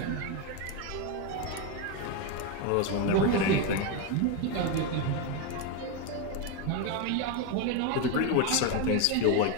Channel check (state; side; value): different; both; correlation 0.03